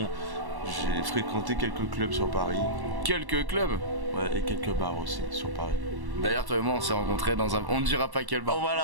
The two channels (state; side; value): late; left; 1.1 ms